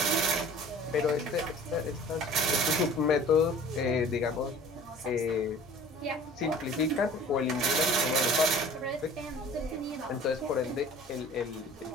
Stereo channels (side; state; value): both; normal; correlation 0.46